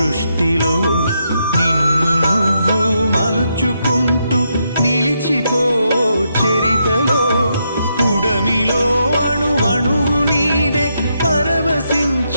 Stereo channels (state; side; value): inverted; both; correlation -0.80